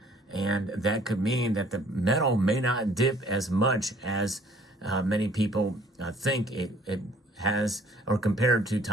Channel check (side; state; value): both; normal; correlation 0.58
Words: and that could mean that the metal may not dip as much as many people think it has, or compared to